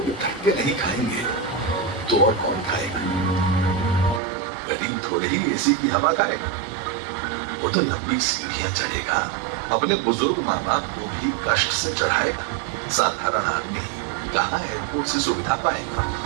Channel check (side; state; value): left; drops out; at 4.2 s